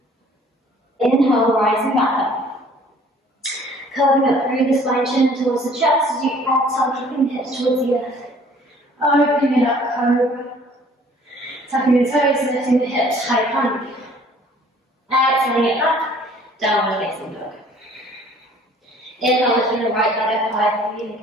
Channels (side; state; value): both; normal; correlation 0.55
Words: Inhale, rising back up. Curving up through the spine, chin towards the chest as you exhale, dropping the hips towards the earth. Opening it up, cobra. Tucking the toes, lifting the hips, high plank. Exhaling it back, downward facing dog. Inhale, lifting the right leg up high,